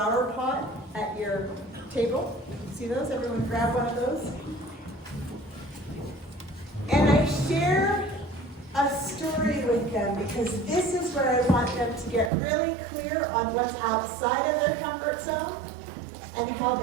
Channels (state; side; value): drops out; left; at 12.3 s